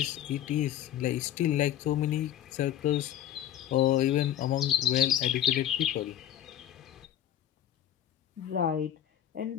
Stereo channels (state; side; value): quieter; right; 11.2 dB